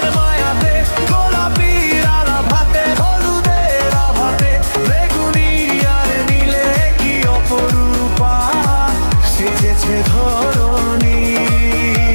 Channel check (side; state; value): both; inverted; correlation -1.00